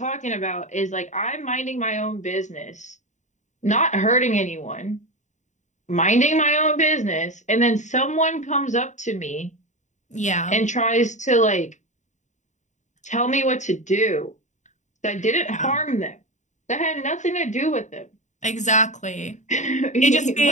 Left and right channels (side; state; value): right; late; 0.35 ms